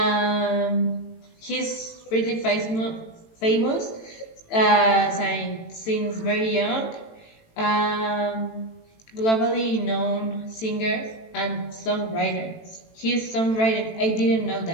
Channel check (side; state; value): right; late; 18 ms